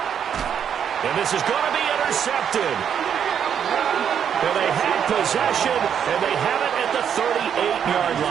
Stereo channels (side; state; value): left; quieter; 8.3 dB